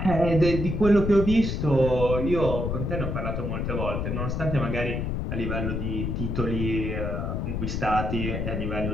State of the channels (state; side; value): noise; left; rumble, 2 dB below the sound